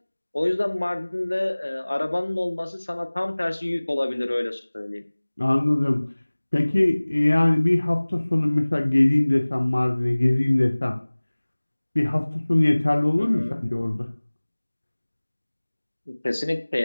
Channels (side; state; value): both; inverted; correlation -1.00